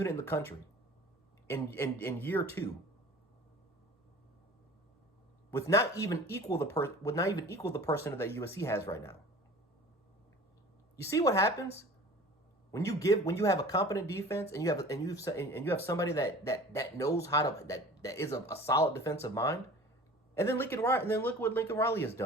in the country in year 2. With not even equal the person that USC has right now. You see what happens when you have a competent defense and you have somebody that knows how to that is a solid defensive mind, and then look what Lincoln Riley has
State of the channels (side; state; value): both; normal; correlation 0.42